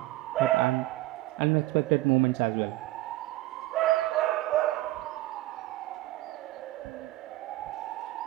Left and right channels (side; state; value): left; quieter; 17.6 dB